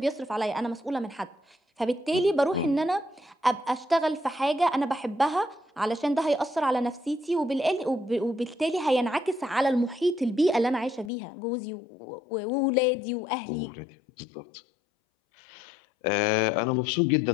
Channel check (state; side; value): drops out; right; at 11.1 s